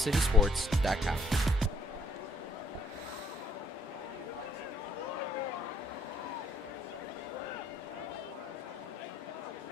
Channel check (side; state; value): both; normal; correlation 0.65